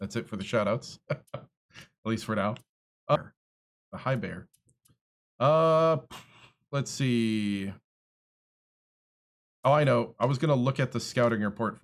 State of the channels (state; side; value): identical; both; correlation 1.00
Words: That's it for the shout-outs. At least for now. The Hi Bear. Let's see. Oh, I know. I was going to look at the scouting report